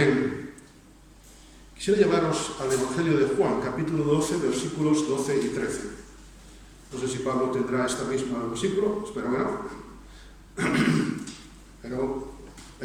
Quisiera llevaros al Evangelio de Juan, capítulo 12, versículos 12 y 13. No sé si Pablo tendrá esta misma versículo, espero que no. Pero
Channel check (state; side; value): identical; both; correlation 1.00